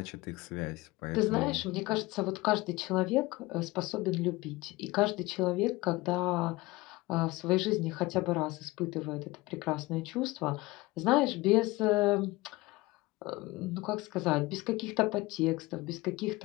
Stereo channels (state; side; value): quieter; right; 21.0 dB